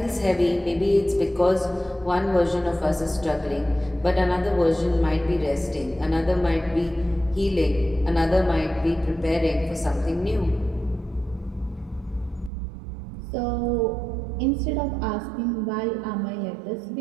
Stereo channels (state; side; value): drops out; left; at 12.5 s